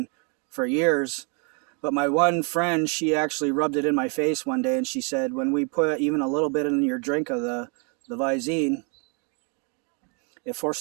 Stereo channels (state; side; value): quieter; left; 36.6 dB